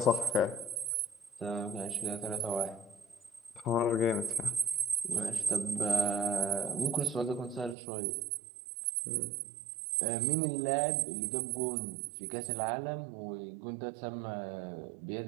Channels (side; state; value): left; drops out; at 7.8 s